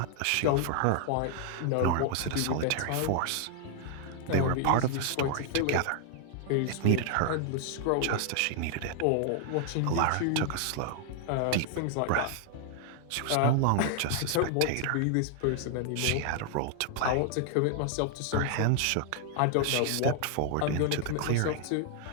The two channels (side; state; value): both; different; correlation 0.00